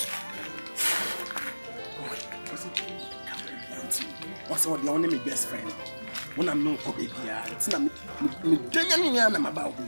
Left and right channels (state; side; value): inverted; both; correlation -1.00